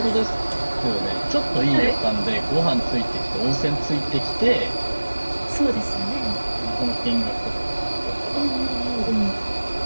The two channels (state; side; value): inverted; both; correlation -1.00